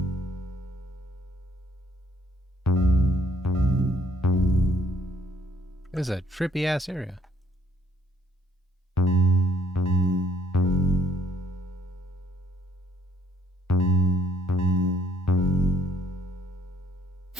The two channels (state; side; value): normal; both; correlation 0.65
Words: This is a trippy ass area.